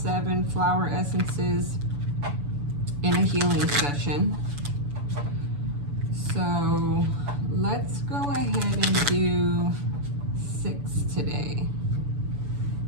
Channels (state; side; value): late; left; 7.0 ms